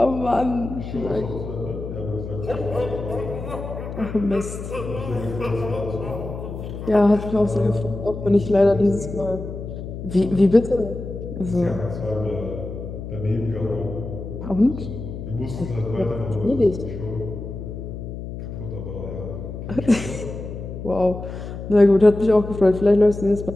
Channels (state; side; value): noise; left; hum, 8 dB below the sound